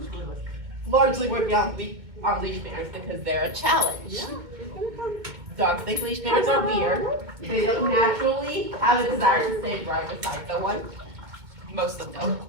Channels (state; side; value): late; left; 2.2 ms